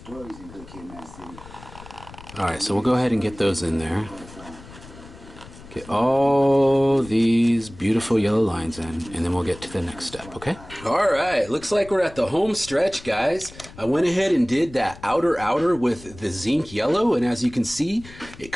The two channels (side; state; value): left; noise; rumble, 18 dB below the sound